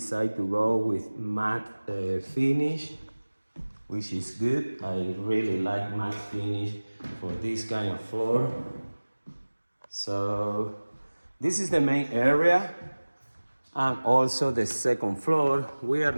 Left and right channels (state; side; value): inverted; both; correlation -1.00